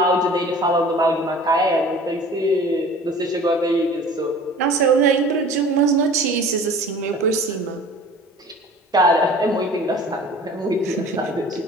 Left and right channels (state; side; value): normal; both; correlation 0.44